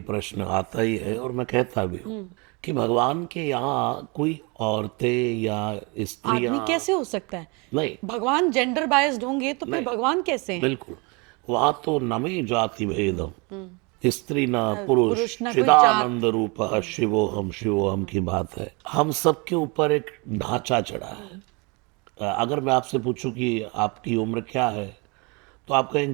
प्रश्न आता ही है और मैं कहता भी हूँ कि भगवान के यहाँ कोई औरतें या स्त्रियां आदमी कैसे हो सकता है? नहीं, भगवान जेंडर बायस्ड होंगे तो फिर नहीं, भगवान कैसे हैं? बिल्कुल। वहाँ तो नमे जाति भेदम, स्त्री न पुरुष पुरुष, न कोई चिदानंद रूप शिवोहम की बात है। हम सबके ऊपर एक ढांचा चढ़ा है। अगर मैं आपसे पूछूं कि आपकी उम्र क्या है तो आप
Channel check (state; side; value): quieter; left; 29.4 dB